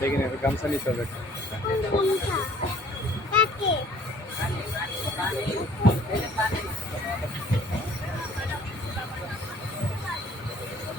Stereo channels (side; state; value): both; normal; correlation 0.55